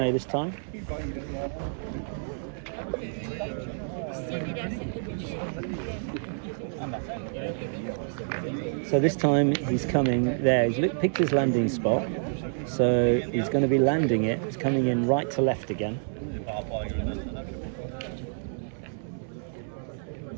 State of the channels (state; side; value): silent; left; 59 dB below the other